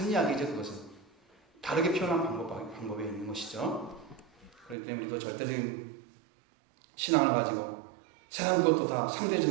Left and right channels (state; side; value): drops out; left; at 4.8 s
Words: 이야기죠. 그것은 다르게 표현한 방법에 있는 것이죠. 그렇기 때문에 또 절대적인 신앙을 가지고 세상 것도 다